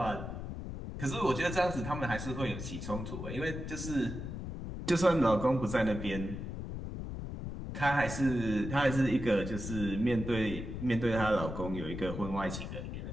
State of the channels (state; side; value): noise; left; rumble, 7 dB below the sound